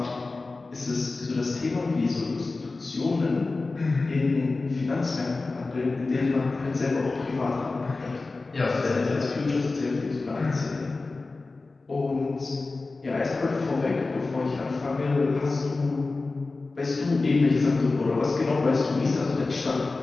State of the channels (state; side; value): quieter; right; 3.6 dB